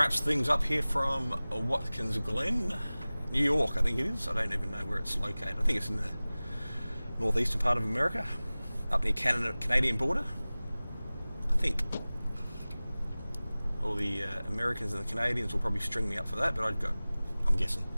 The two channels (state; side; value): inverted; both; correlation -0.99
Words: things up here from Watkins Glen, New York, I think it is. I don't even know where it's located. I think it's in the northeastern part of America, up near Canadian border, I think. All the Americans and the Canadians will probably string me up for that, but I'm guessing